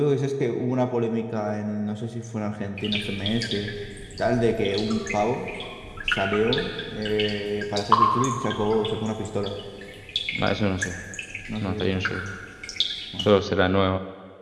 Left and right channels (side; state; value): both; identical; correlation 1.00